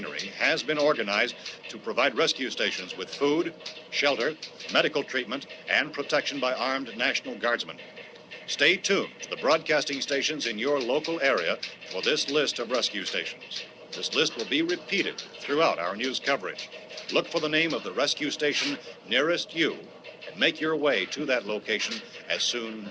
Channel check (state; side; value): identical; both; correlation 1.00